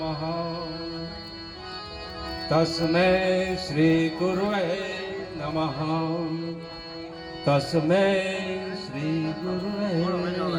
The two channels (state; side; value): identical; both; correlation 1.00